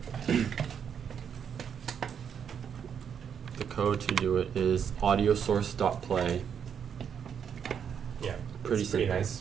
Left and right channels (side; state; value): left; quieter; 7.7 dB